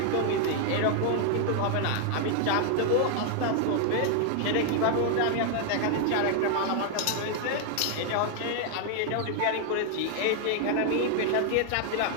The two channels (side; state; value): both; different; correlation 0.00